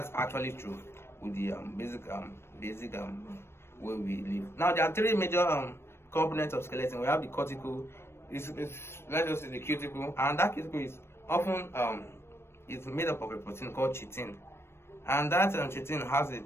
actually true with the basic way we live. Now there are three major components of skeleton. We have the cortical, it's let's just say the cuticle, and that cuticle is often it's made up of a protein called chitin, and that chitin has a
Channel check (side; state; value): right; late; 0.12 ms